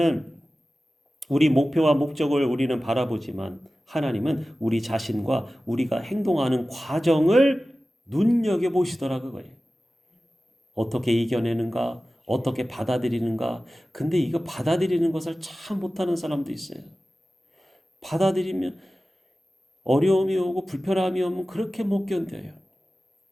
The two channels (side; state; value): both; normal; correlation 0.96